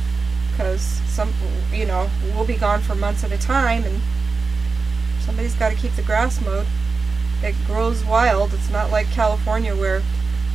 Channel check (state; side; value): quieter; left; 4.5 dB